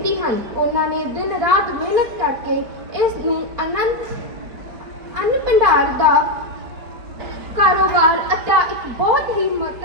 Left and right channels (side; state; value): left; late; 4.7 ms